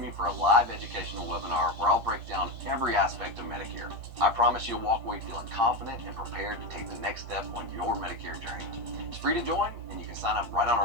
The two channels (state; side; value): late; left; 8.5 ms